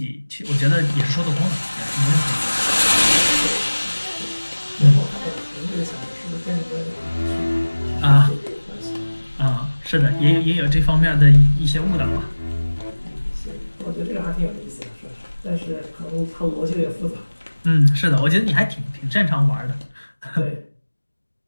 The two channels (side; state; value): both; inverted; correlation -1.00